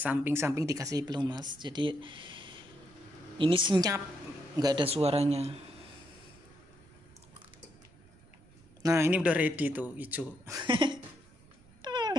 dikasih pelumas, jadi ini senyap, nggak ada suaranya. Nah ini udah ready tuh hijau.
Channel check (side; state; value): right; noise; rumble, 26 dB below the sound